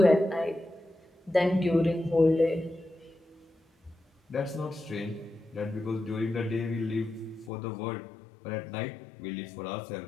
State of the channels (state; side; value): drops out; right; at 7.5 s